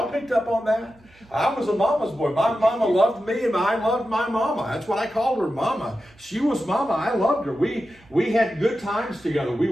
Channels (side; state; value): right; noise; hum, 28 dB below the sound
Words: picked up on that? I was a mama's boy. My mama loved me and I loved my mama. That's what I called her, mama. She was mama. I loved her. We had good times together. We